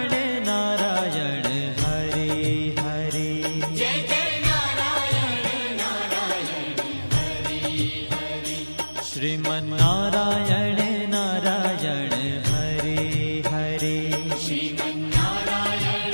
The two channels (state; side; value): inverted; both; correlation -1.00